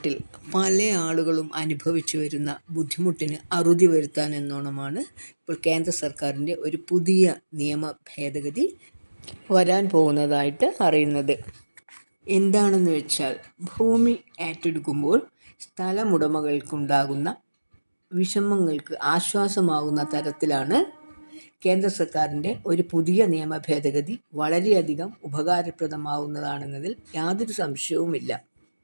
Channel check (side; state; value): both; inverted; correlation -1.00